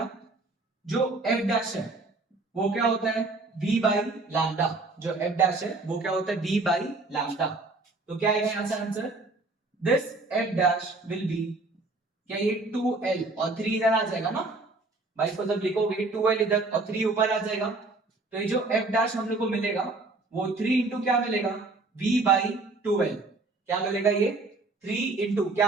जो f डैश है वो क्या होता है, v बाई लैम्डा। जो f डैश है वो क्या होता है, v बाई लैम्डा। तो क्या आएगा यहां से answer, this f dash will be, क्या ये 2l और 3 इधर आ जाएगा ना भाई, इसको जब लिखोगे 2l इधर और 3 ऊपर आ जाएगा, तो ये जो f डैश हम लोग को मिलेगा वो 3 इंटू क्या मिलेगा, v बाई 2l। क्या मिलेगा ये, 3 इंटू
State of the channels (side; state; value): left; quieter; 3.4 dB